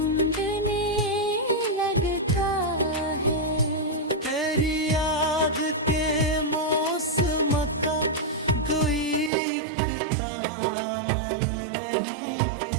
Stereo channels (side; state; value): left; drops out; at 9.3 s